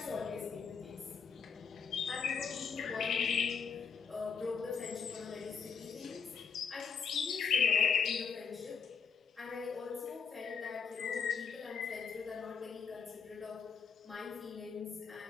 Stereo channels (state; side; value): quieter; right; 6.1 dB